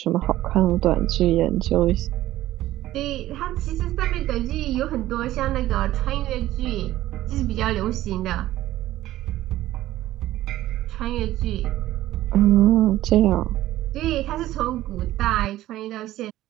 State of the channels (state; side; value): quieter; left; 14.9 dB